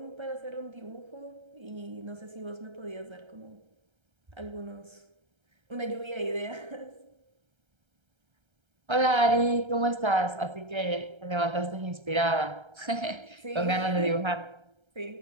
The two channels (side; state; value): left; late; 1.3 ms